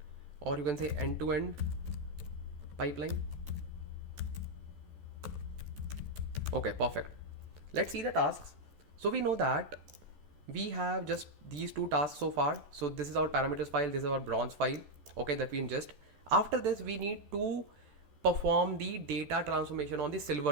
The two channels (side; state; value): left; late; 14 ms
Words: or you can say end-to-end pipeline. Okay, perfect. Let's see the tasks. So we know that we have just these two tasks so far. So this is our parameters file, this is our bronze file, okay, that we ingest. After this, we need to perform the data transformation on the